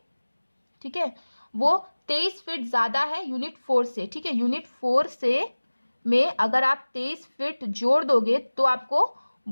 ठीक है, वो 23 फीट ज्यादा है यूनिट 4 से, ठीक है। यूनिट 4 से में अगर आप 23 फीट जोड़ दोगे तो आपको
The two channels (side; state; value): both; inverted; correlation -1.00